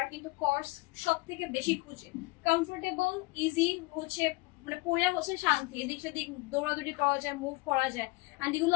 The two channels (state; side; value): quieter; right; 24.0 dB